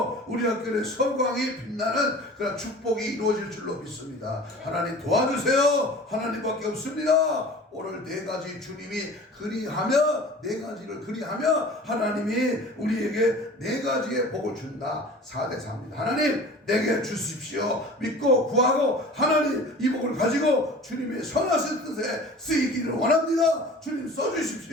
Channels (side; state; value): both; normal; correlation 0.41